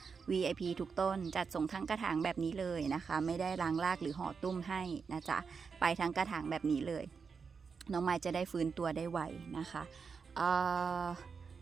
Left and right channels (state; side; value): quieter; left; 5.5 dB